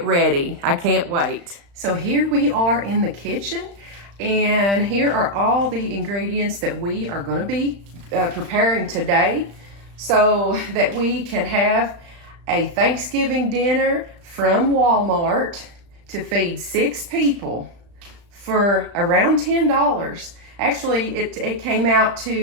ready. I can't wait. So here we are in the kitchen, and here are all the ingredients that we are going to be preparing today so that we can have a Thanksgiving dinner from Walmart to feed 6 people for around $10. Actually, it came out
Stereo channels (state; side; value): late; left; 35 ms